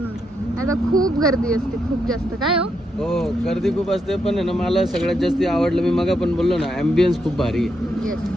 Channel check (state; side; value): normal; both; correlation 0.80